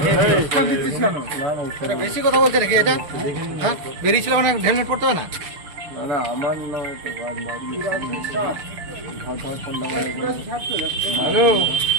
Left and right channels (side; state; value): left; late; 6.4 ms